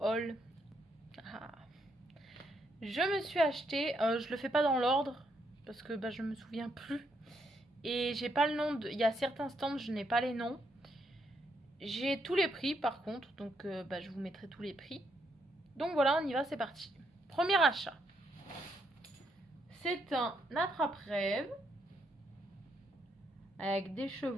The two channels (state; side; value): normal; both; correlation 0.76